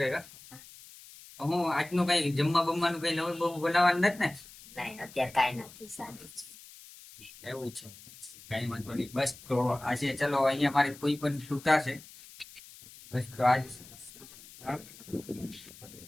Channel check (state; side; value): noise; left; hiss, 19 dB below the sound